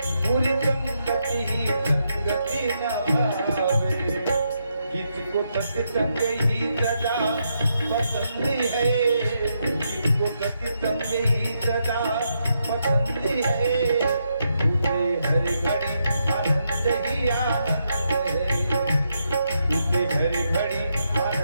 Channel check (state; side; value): inverted; both; correlation -0.80